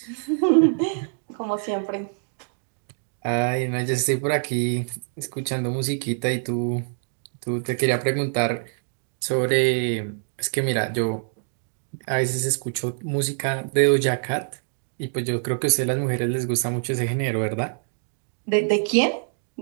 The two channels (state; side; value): silent; left; digital silence